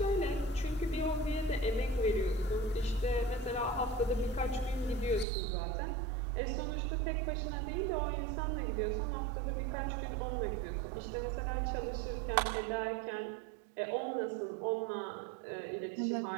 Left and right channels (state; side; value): drops out; left; at 5.2 s